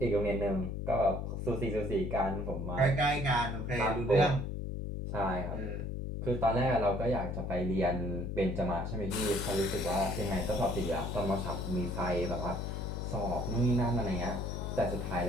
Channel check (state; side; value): noise; left; hum, 4 dB below the sound